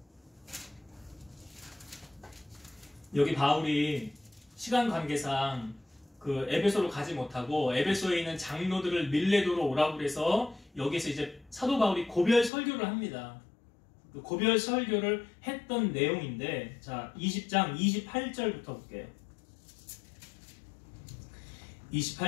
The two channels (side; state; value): right; drops out; at 12.5 s